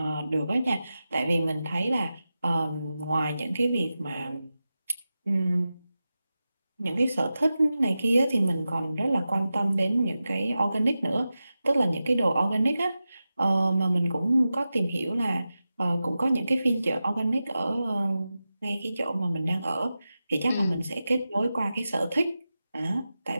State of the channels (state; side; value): inverted; both; correlation -0.93